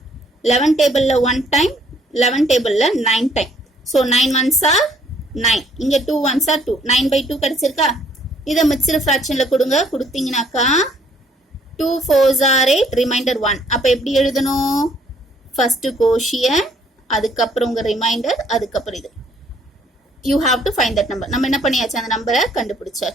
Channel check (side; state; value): both; normal; correlation 0.63